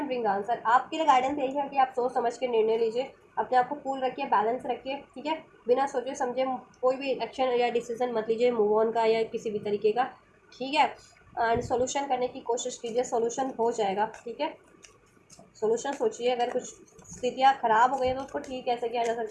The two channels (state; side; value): identical; both; correlation 1.00